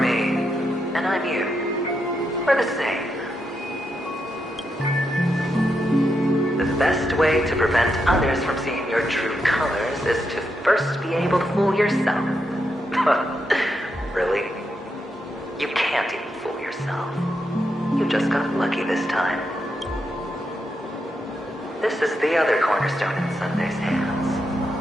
and I'm you. We're the same. The best way to prevent others from seeing your true colors is to first be able to fool yourself. Really? You can't even fool yourself. You just got lucky this time. This is the other cornerstone in Sunday's hands.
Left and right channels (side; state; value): both; normal; correlation 0.83